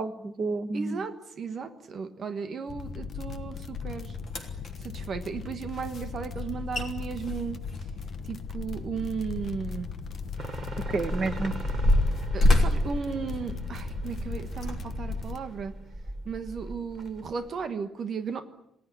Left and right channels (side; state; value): both; normal; correlation 0.77